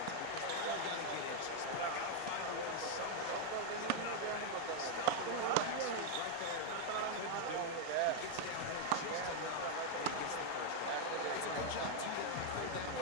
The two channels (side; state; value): both; different; correlation 0.01